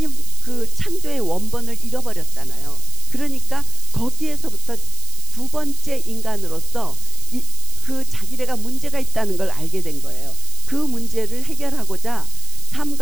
그 창조의 원본을 잃어버렸잖아요. 그러니까 거기에서부터 두 번째 인간으로서 그 자기네가 문제가 있다는 걸 알게 된 거예요. 그 문제를 해결하고자 삶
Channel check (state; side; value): noise; right; hiss, 2 dB below the sound